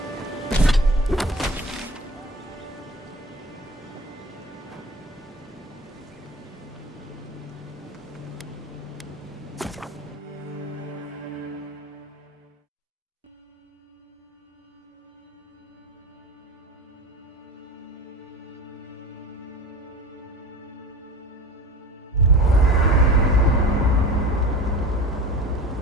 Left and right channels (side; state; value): both; normal; correlation 0.35